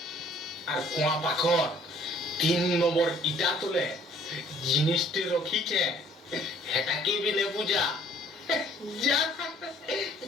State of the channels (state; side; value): normal; both; correlation 0.58